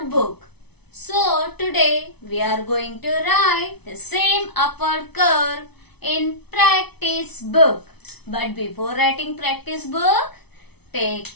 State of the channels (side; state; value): right; late; 0.99 ms